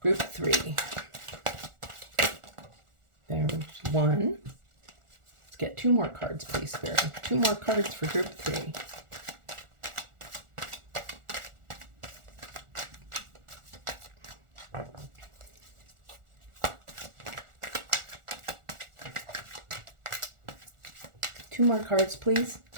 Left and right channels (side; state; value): left; late; 1.4 ms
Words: 3. There's one. Let's get 2 more cards, please, Spirit. 2 more cards for group 3. Two more cards, please.